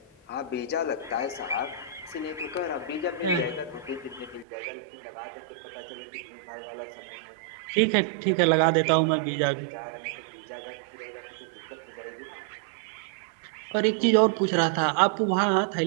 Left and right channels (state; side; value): drops out; left; at 4.5 s